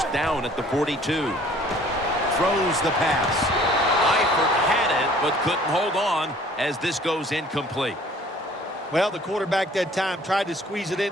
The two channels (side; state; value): both; normal; correlation 0.54